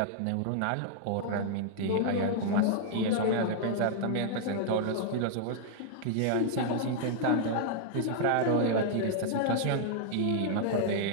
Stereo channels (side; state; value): both; different; correlation -0.01